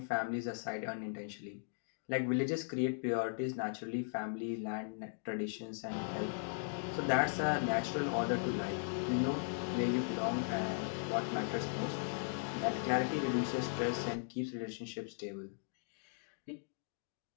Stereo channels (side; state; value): right; silent; digital silence